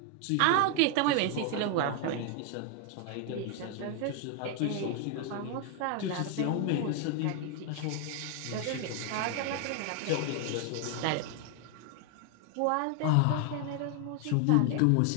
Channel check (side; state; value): both; different; correlation 0.00